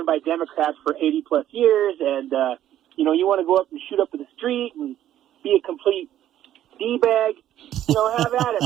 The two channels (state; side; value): quieter; left; 12.0 dB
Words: by Democrats for 80+ years, and you want to go up and shoot up in the street and be a complete D-bag, have at